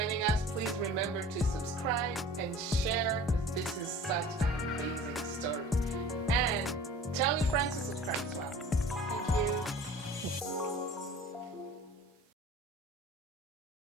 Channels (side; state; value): both; normal; correlation 0.44